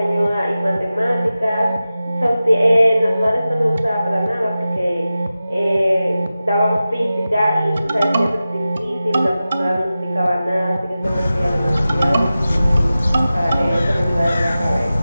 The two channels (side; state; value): both; inverted; correlation -0.94